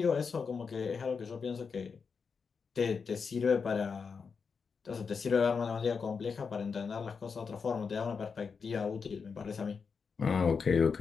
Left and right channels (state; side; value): quieter; right; 5.5 dB